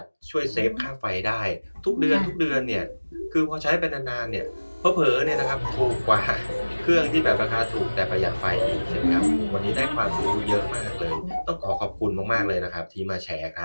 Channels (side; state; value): both; inverted; correlation -1.00